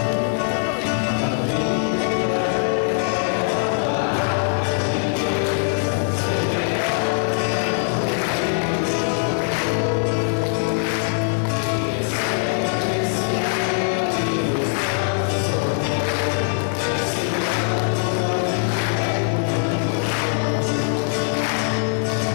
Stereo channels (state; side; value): silent; right; digital silence